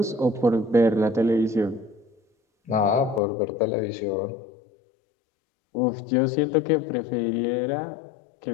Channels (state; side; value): drops out; right; at 3.2 s